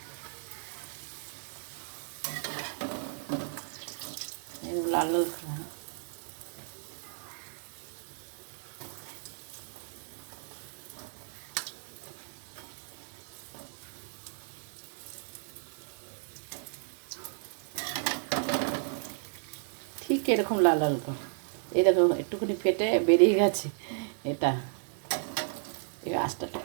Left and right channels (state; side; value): silent; left; digital silence